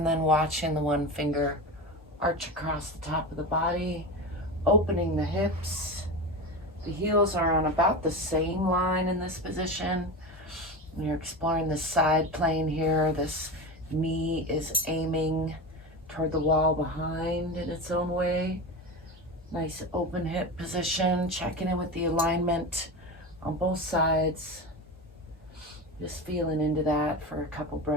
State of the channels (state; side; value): normal; both; correlation 0.24